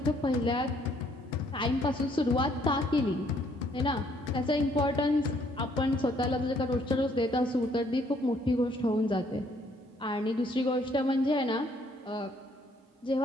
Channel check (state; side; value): normal; both; correlation 0.66